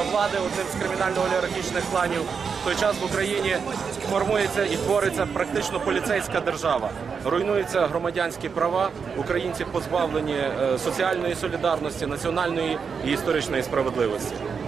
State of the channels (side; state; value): left; quieter; 6.0 dB